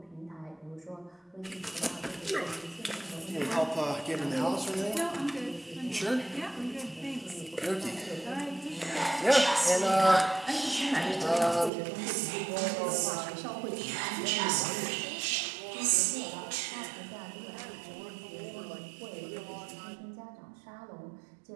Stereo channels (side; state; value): left; drops out; at 11.7 s